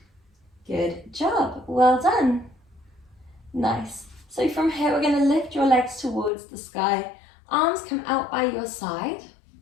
Good job. Well done. Nice. So from here, we're going to lift your legs towards the sky. Arms come out by your side.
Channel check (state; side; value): drops out; right; at 6.3 s